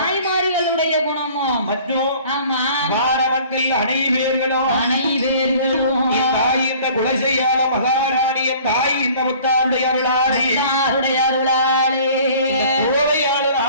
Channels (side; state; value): both; inverted; correlation -0.50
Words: குணமோ மற்றும் ஆமா வார மக்கள் அனைவர்களும் தாய் இந்த குலசையாள மகாராணிய தாய் இந்த முத்தாருடைய அருளாலே கோவையாளர்